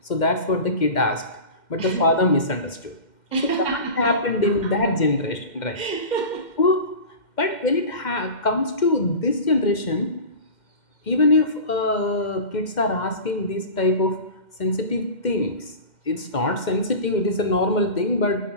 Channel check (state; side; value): late; right; 2.1 ms